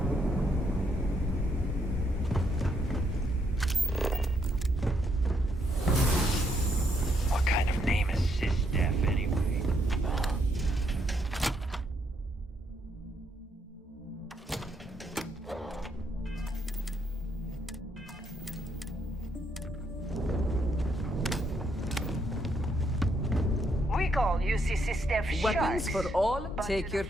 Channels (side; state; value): both; normal; correlation 0.75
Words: What kind of name is SysDef anyway? We call UC SysDef Weapons sharks, for all, but take to your the